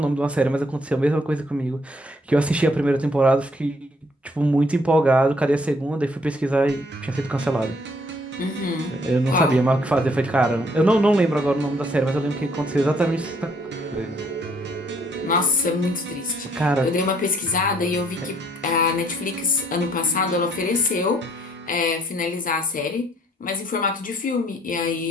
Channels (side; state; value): both; normal; correlation 0.65